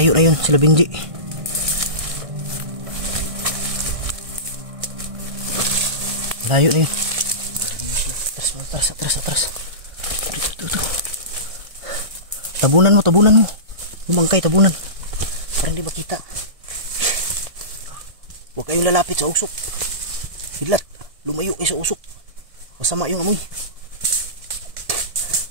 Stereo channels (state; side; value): late; left; 1.6 ms